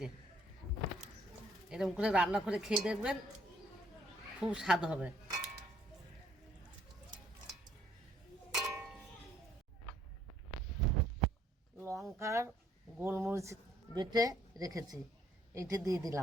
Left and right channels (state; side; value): normal; both; correlation 0.65